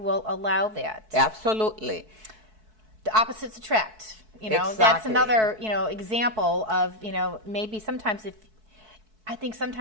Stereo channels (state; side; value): late; left; 4.6 ms